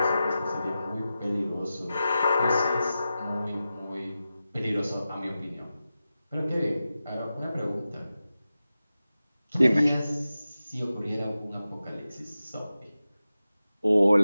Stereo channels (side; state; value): both; inverted; correlation -0.93